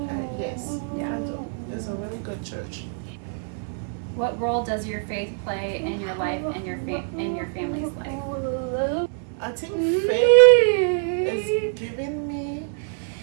yes, Yeah. I do. It's a really good church. What role does your faith play in your life and your family's life? I think faith is giving me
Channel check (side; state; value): left; silent; 62 dB below the other